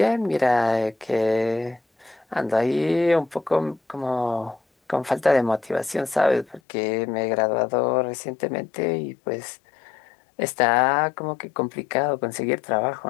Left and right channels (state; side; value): drops out; right; at 6.6 s